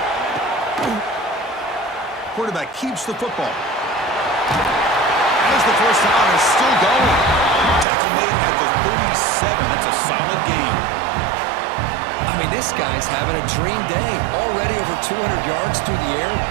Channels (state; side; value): drops out; left; at 7.9 s